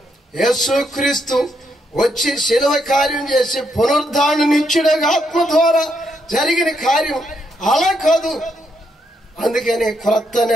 యేసుక్రీస్తు వచ్చి శిలువ కార్యం చేసి పునరుద్ధారణ నిత్యుడగా ఆత్మ ద్వారా జరిగిన కార్యం అలా కాదు. అందుకని క్రొత్త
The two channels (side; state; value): both; normal; correlation 0.77